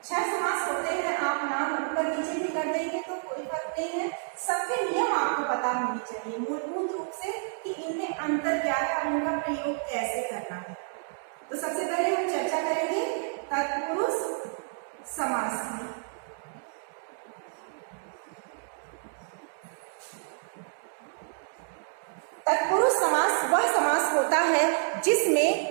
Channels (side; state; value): left; silent; digital silence